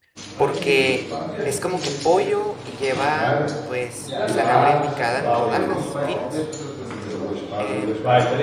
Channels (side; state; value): both; identical; correlation 1.00